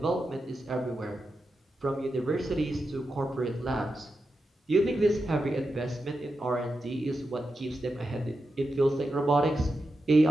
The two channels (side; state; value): both; normal; correlation 0.89